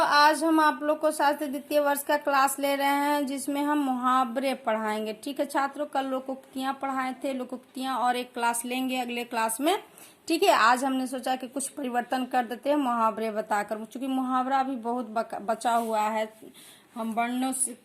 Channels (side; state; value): both; identical; correlation 1.00